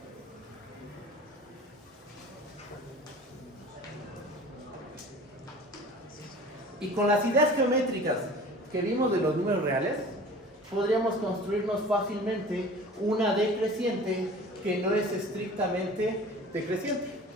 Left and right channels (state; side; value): normal; both; correlation 0.42